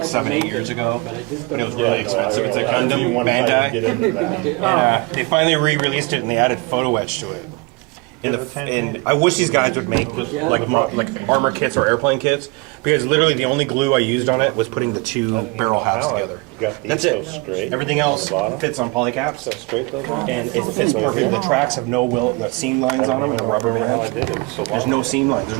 7-8 years ago. And it was really expensive. It's like Gundam Bandi. They finally re-released it and they added photo etch to it. And I wish these guys would make like armor kits or airplane kits, because literally the only glue I used on it was putting the two barrel halves together. That's it. Everything else fits on polycaps. And it fits perfectly. The tracks have no seam lines on them and a rubber band. There's no seam lines. There's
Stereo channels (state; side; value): quieter; left; 26.8 dB